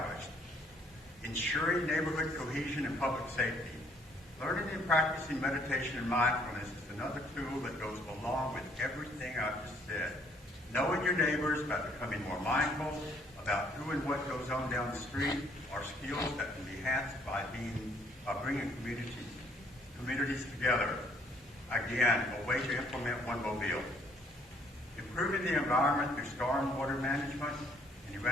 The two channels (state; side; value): normal; both; correlation 0.64